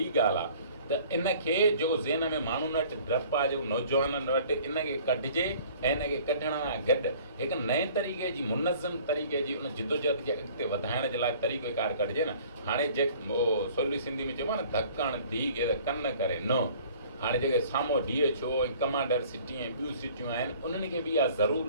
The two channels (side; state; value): both; inverted; correlation -0.51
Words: ॻाल्हि आहे। त इनखे जेको ज़हन में माण्हुनि वटि डपु आहे, जेको नौजवाननि वटि, इनखे कढिजे ऐं इनखे कढण सां गॾु हिकु नए तरीक़े जी मुनज़म तरीक़े जी उन जिदोजहद खे अॻिते वधाइण जे लाइ तरीक़ेकार कढिजे न। हाणे जे सवली सिंधी में चइबो आहे न, धकण धी खे त कन करे न। हाणे जेके साम्हूं DHO ऐं कमांडर सिटी ऐं ॿियूं सिटियूं आहिनि, उन्हनि खे बि इहा ज़रूरु